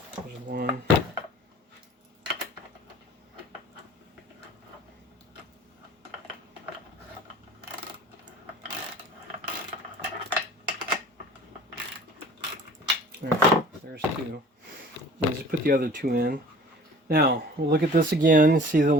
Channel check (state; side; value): normal; both; correlation 0.46